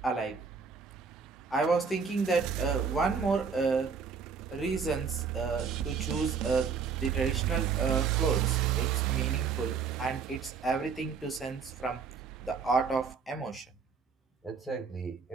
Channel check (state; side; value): quieter; left; 5.7 dB